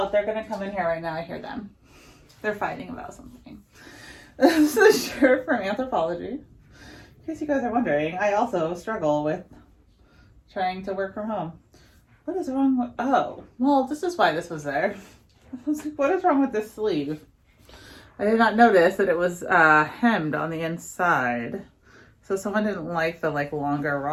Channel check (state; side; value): identical; both; correlation 1.00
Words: They're going to come in here right now. I hear them. They're fighting about something. This is a shirt from Anthropology. In case you guys are wondering, I also struggle with trying to work from home. What is wrong with... Oh, well, this is why this was there. I was like, what is wrong with this sleeve? I did not notice that it was hemmed on the inside. So someone didn't like the longer